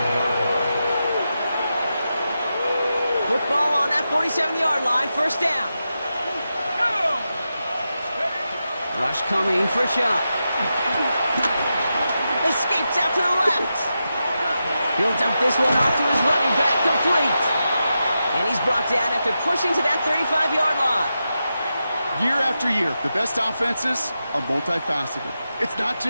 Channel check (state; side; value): inverted; both; correlation -0.89